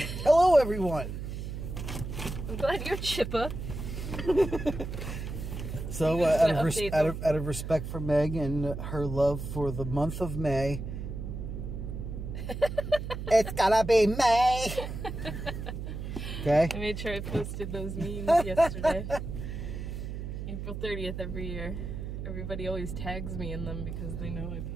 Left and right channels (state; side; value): noise; right; hum, 6 dB below the sound